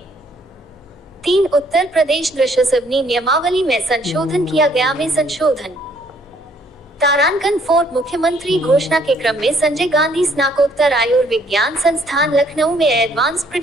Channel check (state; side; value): normal; both; correlation 0.65